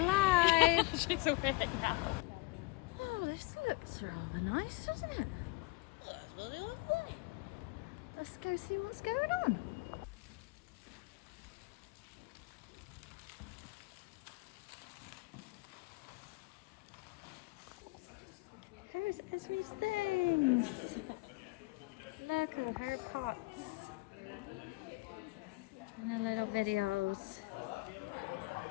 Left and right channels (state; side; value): quieter; right; 22.8 dB